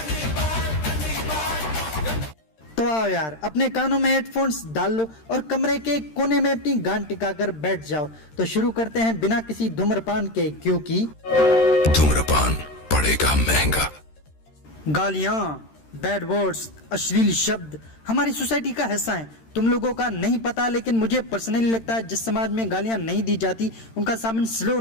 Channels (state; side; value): late; right; 13 ms